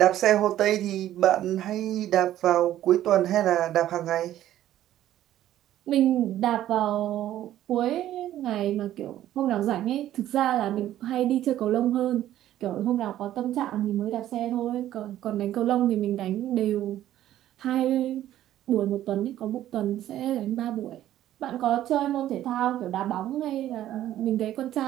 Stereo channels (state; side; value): quieter; left; 12.8 dB